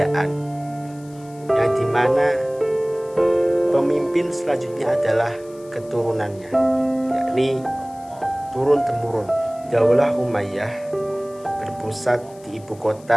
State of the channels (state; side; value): noise; left; hiss, 26 dB below the sound